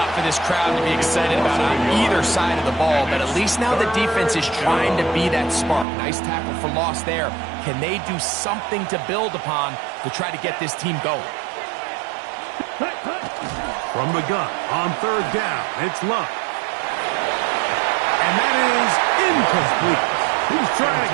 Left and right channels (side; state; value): left; drops out; at 5.9 s